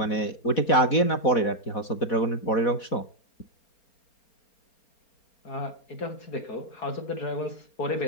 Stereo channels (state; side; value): late; right; 4.1 ms